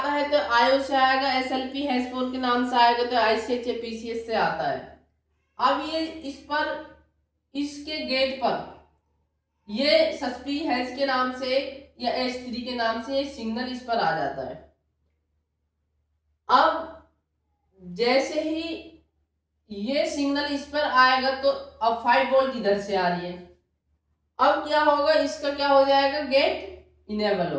है तो आयो से आएगा, एसएलपी हैश4 के नाम से आएगा तो आईसीएच या पीसीएस से आता है। अब ये इसके गेट पर ये सस्पी हैश के नाम से या एस3 के नाम से सिग्नल इस पर आ जाता है। अब जैसे ही ये सिग्नल इस पर आएगा तो अब 5 वोल्ट इधर से आ रही है, अब क्या होगा, इसका क्या हो जाएगा, गेट इनेबल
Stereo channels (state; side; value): identical; both; correlation 1.00